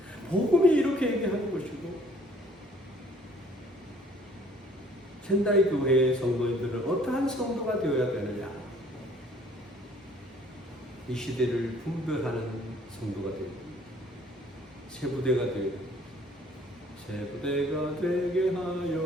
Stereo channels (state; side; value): normal; both; correlation 0.57